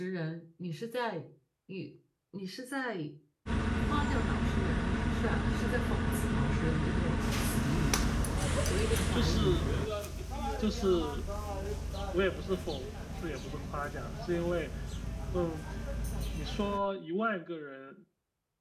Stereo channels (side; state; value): both; identical; correlation 1.00